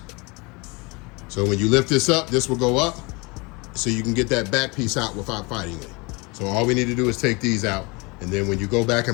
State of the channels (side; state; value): right; quieter; 27.7 dB